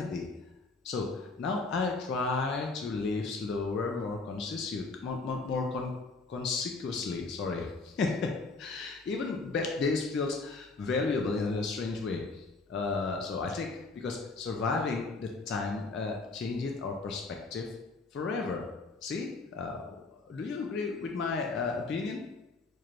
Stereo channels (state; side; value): quieter; right; 3.7 dB